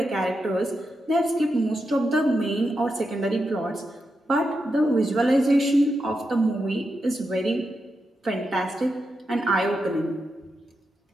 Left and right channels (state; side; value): normal; both; correlation 0.86